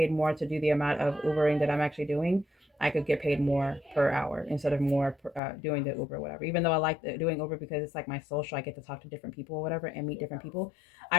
more to do the amount of Ubering that I'm actually doing. I could get paid more per hour instead of more doing the Uber, whatever. Even though I like doing Uber because it's like my social, I get to talk to different people or whatever and meet different people.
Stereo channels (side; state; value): right; drops out; at 5.4 s